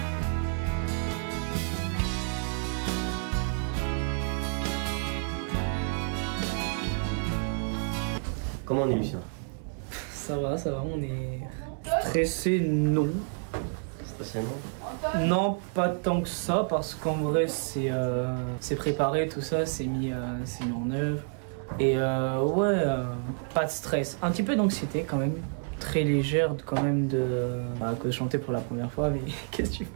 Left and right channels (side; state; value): left; silent; 56 dB below the other